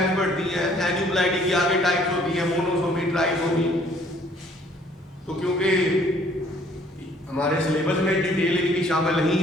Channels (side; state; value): both; normal; correlation 0.60